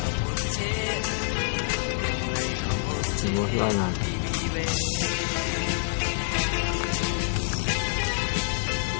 ဒီလိုလှမ်းလာ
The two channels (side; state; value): right; silent; 60 dB below the other